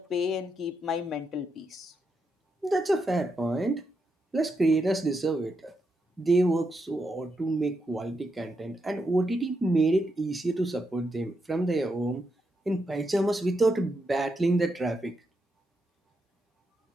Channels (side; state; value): both; normal; correlation 0.83